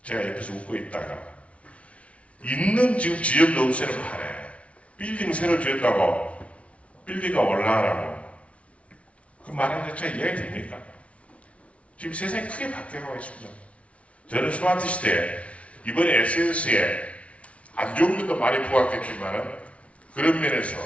제가 옆에서 웃고 있다가 있는 지금 지역 노후세를 파네. 빌딩 새로 지었다고 빌딩가 올라가라고. 그 말하는 자체가 이해가 됩니까? 지금 세상이 크게 바뀌어가고 있습니다. 저는 스마트 시대에 이번에 SNS에 안 좋은 것도 많이 부각했지만 그런 면에서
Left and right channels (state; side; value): late; right; 0.063 ms